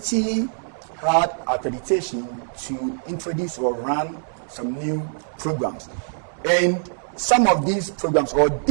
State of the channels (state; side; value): silent; left; digital silence